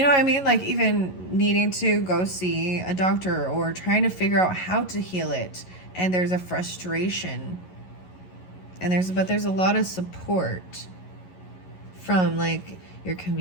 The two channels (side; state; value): right; late; 11 ms